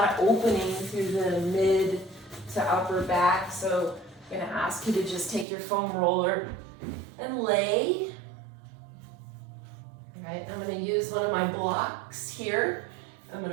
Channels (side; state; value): left; drops out; at 5.5 s